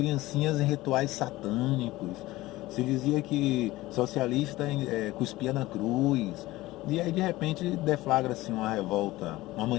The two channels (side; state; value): right; quieter; 18.3 dB